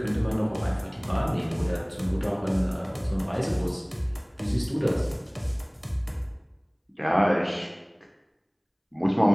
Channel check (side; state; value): both; identical; correlation 1.00